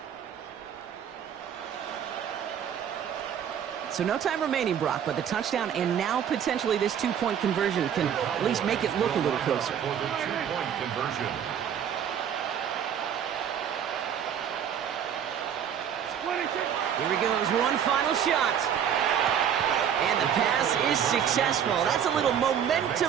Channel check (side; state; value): left; quieter; 8.7 dB